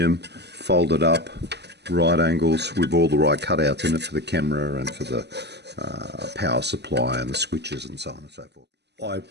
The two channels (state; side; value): late; left; 0.49 ms